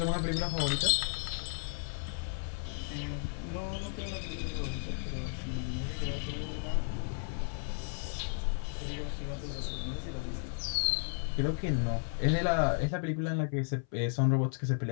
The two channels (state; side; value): silent; right; 55 dB below the other